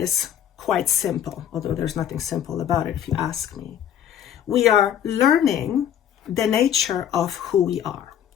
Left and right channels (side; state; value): right; quieter; 9.8 dB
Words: quite simple, although there's nothing simple about it if you ask me. We are learning the nature of who we are.